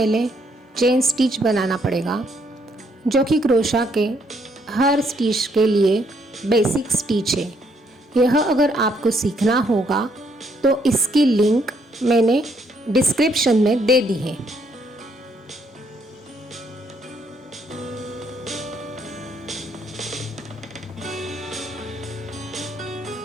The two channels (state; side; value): normal; both; correlation 0.71